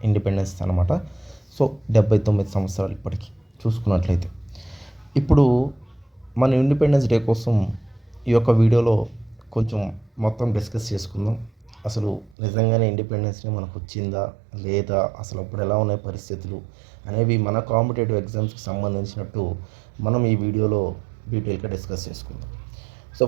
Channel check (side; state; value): left; drops out; at 12.4 s